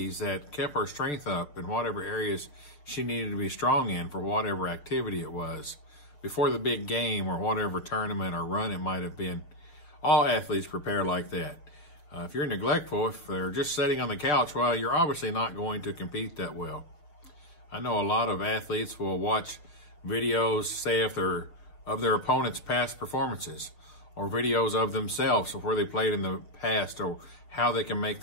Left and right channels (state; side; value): late; right; 6.7 ms